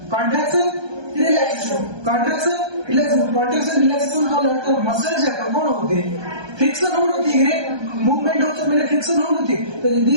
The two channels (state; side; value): late; left; 1.2 ms